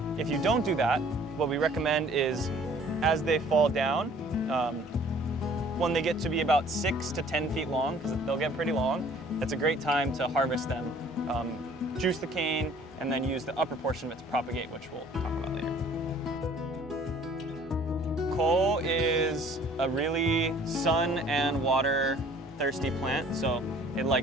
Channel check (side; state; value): both; normal; correlation 0.54